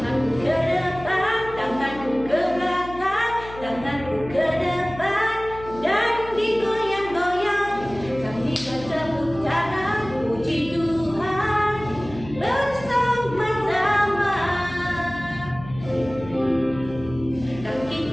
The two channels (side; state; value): left; noise; hum, 15 dB below the sound